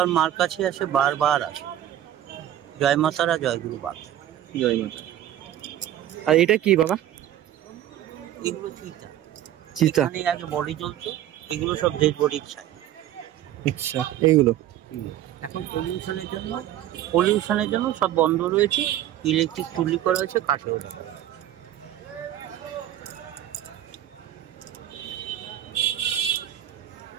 মার কাছে আসে বারবার আসে। জয় মাতারা, জয় গুরু বামদেব। জয় মাতা। আর এটা কি বাবা? এগুলো চিতা। চিতা। এখানে আগে বডি জ্বলতো, এগুলো সব ডেড বডির ছাই। আচ্ছা, এইগুলো এখন পলিউশনের জন্য সব বন্ধ রয়েছে। ইলেকট্রিক চুল্লি করা হয়েছে, কাঠে ওঠা।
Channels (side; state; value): left; quieter; 12.2 dB